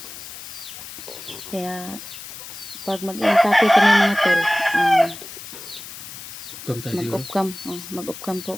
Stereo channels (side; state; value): left; noise; hiss, 12 dB below the sound